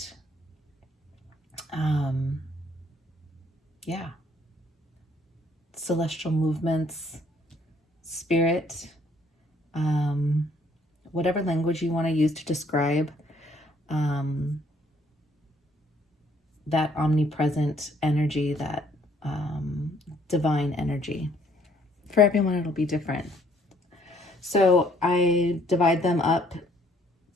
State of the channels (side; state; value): both; normal; correlation 0.64